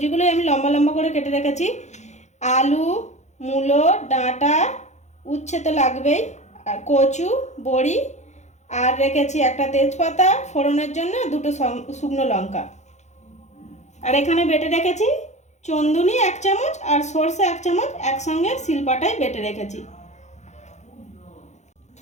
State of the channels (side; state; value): right; late; 0.33 ms